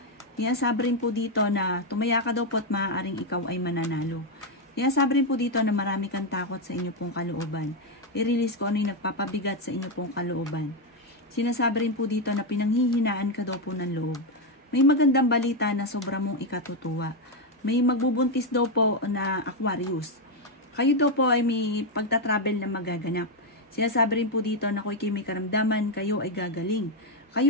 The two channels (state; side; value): normal; both; correlation 0.05